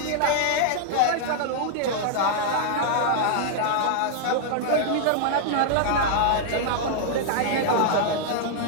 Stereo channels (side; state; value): both; different; correlation -0.01